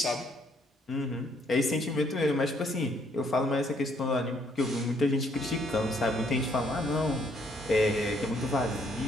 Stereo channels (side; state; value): both; normal; correlation 0.68